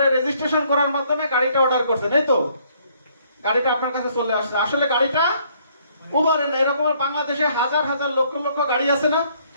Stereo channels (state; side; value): inverted; both; correlation -0.65